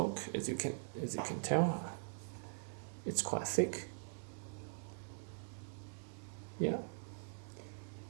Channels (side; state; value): left; silent; digital silence